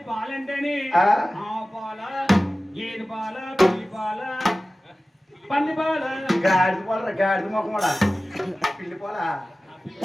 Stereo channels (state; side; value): normal; both; correlation 0.96